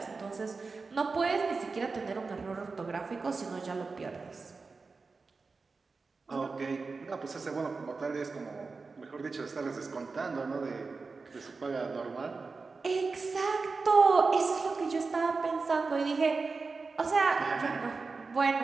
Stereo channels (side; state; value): left; quieter; 4.3 dB